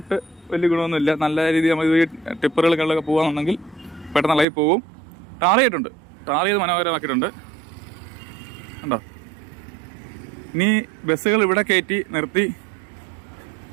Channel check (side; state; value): left; drops out; at 4.5 s